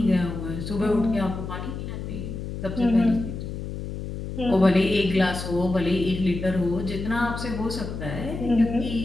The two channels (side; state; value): left; noise; hum, 7 dB below the sound